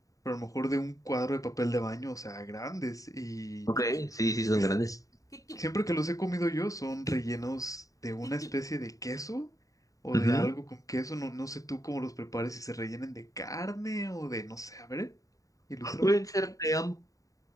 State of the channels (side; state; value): right; late; 0.16 ms